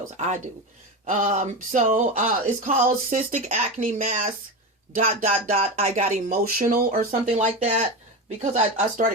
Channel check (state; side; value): normal; both; correlation 0.20